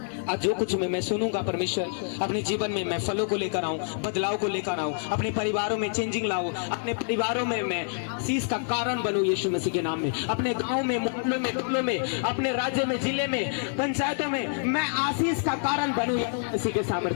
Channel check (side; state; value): right; silent; 60 dB below the other